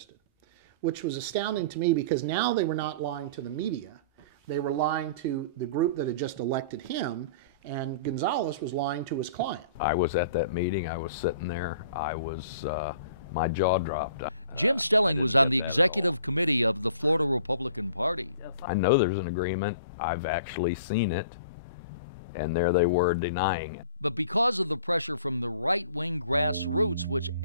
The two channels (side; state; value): both; inverted; correlation -0.47